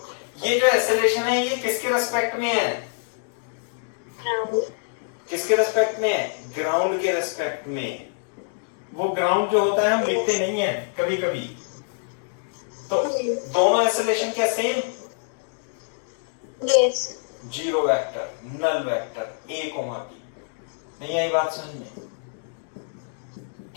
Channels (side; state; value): right; silent; digital silence